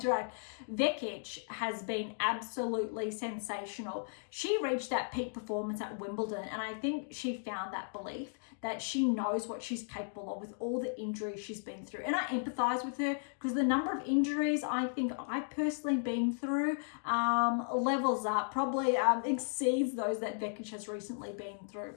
Vekic has been absolutely sensational. She reached that peak performance at Wimbledon, and I think she found that belief that she knows what she's capable of with all the injuries she's been through. And I empathize with her because the number of injuries I think I've personally been through levels up, probably exceeds those that Vekic has recently been through.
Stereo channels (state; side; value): silent; right; digital silence